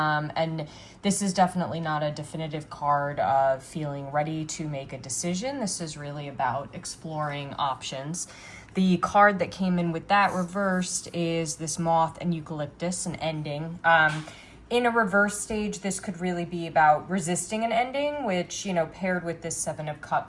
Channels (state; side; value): identical; both; correlation 1.00